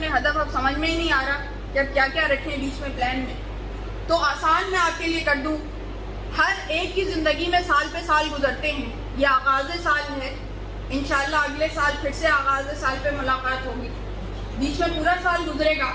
ہدف, اب سمجھ میں ہی نہیں آ رہا کہ اب کیا کیا رکھیں بیچ میں پلان میں. تو آسان میں آپ کے لیے کر دوں. ہر ایک کی زندگی میں سال پہ سال گزرتے ہیں. یہ آغاز سال ہے, انشاءاللہ اگلے سال پھر سے آغاز سال پہ ملاقات ہوگی. بیچ میں پورا سال گزرے گا.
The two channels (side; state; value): both; identical; correlation 1.00